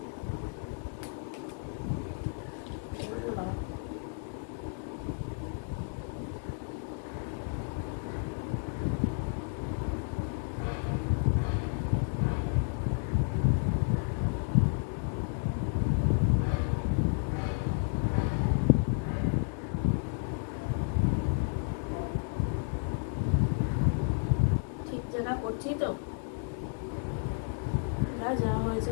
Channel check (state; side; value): silent; right; 57 dB below the other